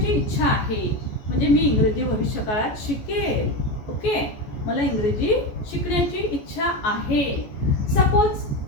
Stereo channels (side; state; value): right; late; 14 ms